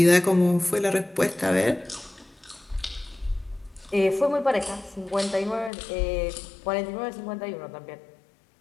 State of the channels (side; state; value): right; drops out; at 5.7 s